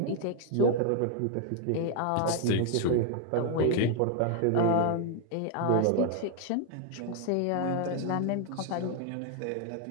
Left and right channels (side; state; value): both; different; correlation 0.00